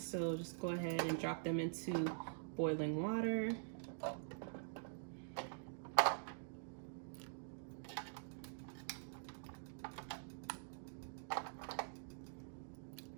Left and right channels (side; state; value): left; silent; digital silence